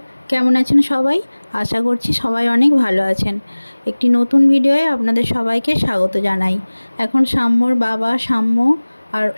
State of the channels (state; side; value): inverted; both; correlation -1.00